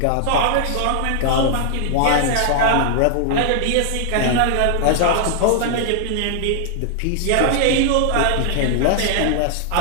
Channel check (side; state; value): both; different; correlation 0.00